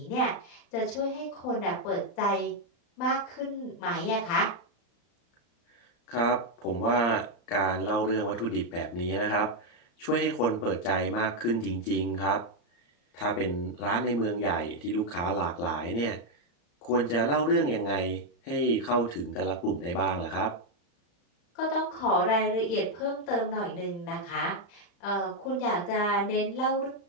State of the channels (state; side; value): late; right; 34 ms